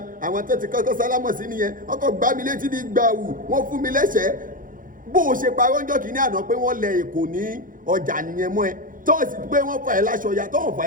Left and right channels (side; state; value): left; late; 0.40 ms